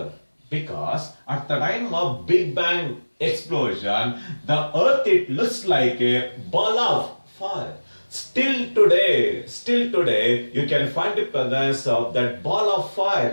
because at the time of Big Bang explosion, the earth it looks like a ball of fire. Still today, you can find the presence of that ball of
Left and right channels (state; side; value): inverted; both; correlation -1.00